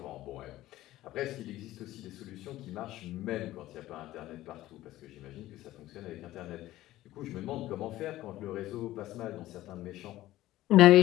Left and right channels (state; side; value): quieter; right; 15.5 dB